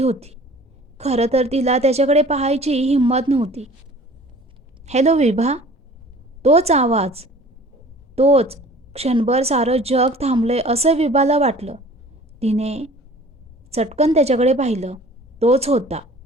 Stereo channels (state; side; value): normal; both; correlation 0.47